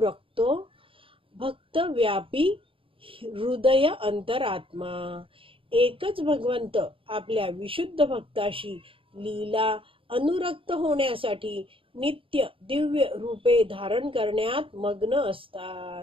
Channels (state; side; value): late; left; 0.26 ms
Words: भक्त व्यापी हृदय अंतरात्मा. एकच भगवंत आपल्या विशुद्ध भक्ताशी लीला अनुरक्त होण्यासाठी नित्य दिव्य रूपे धारण करण्यात मग्न